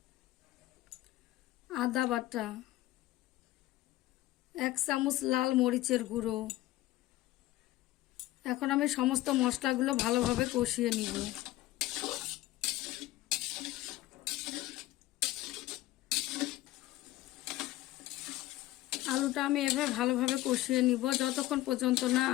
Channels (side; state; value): right; quieter; 16.5 dB